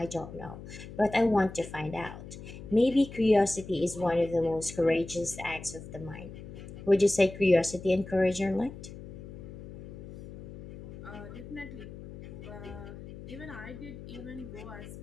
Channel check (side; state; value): left; noise; hum, 13 dB below the sound